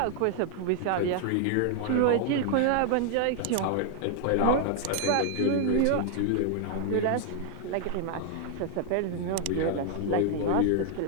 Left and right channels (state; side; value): different; both; correlation 0.00